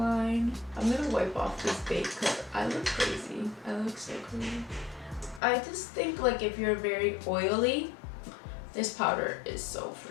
I'm gonna wipe off this bake because I look crazy. I look so crazy. I just think like if you're very oily, this powder is so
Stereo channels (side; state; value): right; drops out; at 5.4 s